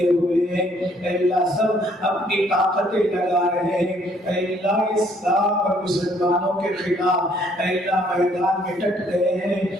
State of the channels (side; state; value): both; normal; correlation 0.64